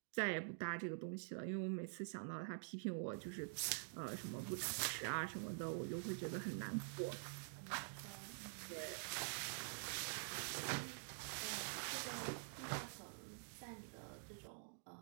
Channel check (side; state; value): left; silent; digital silence